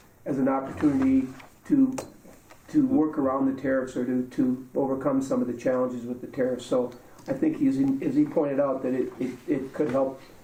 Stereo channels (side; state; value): both; identical; correlation 1.00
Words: as an opportunity to work around the tariffs or to overcome some of the challenges with the tariffs. So I think as he pointed out, that it could help